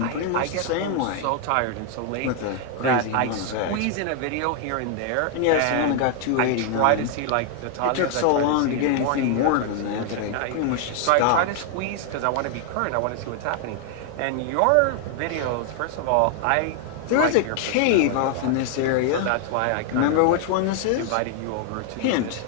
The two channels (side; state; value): both; different; correlation 0.00